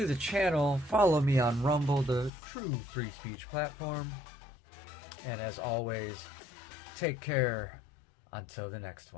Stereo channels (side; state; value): right; drops out; at 2.3 s